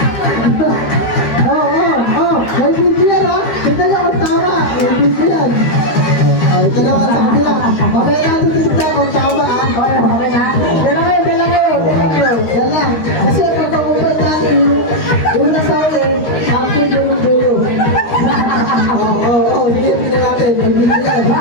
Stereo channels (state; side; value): late; right; 13 ms